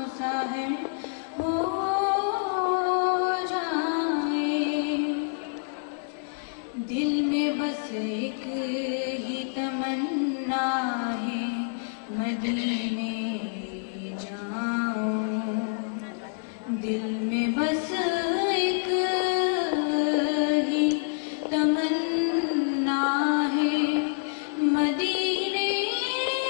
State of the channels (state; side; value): silent; right; digital silence